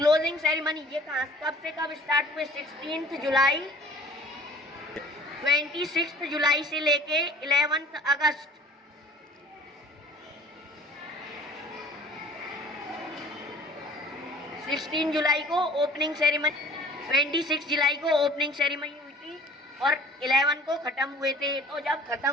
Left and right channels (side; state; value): both; normal; correlation 0.49